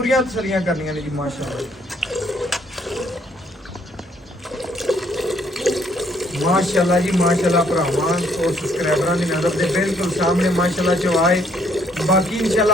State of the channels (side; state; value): both; normal; correlation 0.67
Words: ਤਸੱਲੀਆਂ ਕਰਨੀਆਂ ਨੇ ਜੀ ਮਾਸ਼ਾਅੱਲਾ। ਮਾਸ਼ਾਅੱਲਾ ਜੀ ਮਾਸ਼ਾਅੱਲਾ ਭਰਾਵਾਂ ਔਰ ਸਬਸਕ੍ਰਾਈਬਰਾਂ ਦੀ ਨਜ਼ਰ ਦੇ ਬਿਲਕੁਲ ਸਾਹਮਣੇ ਮਾਸ਼ਾਅੱਲਾ ਚਵਾਏ। ਬਾਕੀ